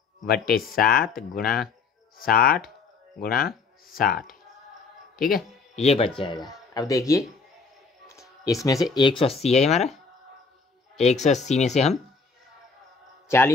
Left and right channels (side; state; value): right; quieter; 4.6 dB